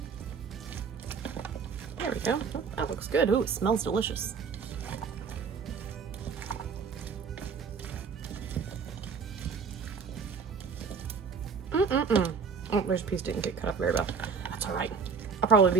There we go. Oh, that looks good. Ooh, it smells delicious. Oh, there's a piece didn't get cut up very well. That's all right. I'll probably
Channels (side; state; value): left; quieter; 5.7 dB